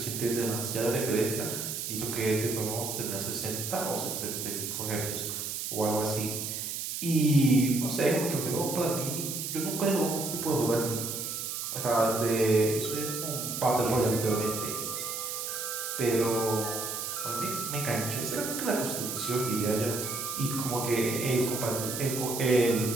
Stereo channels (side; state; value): right; noise; hiss, 4 dB below the sound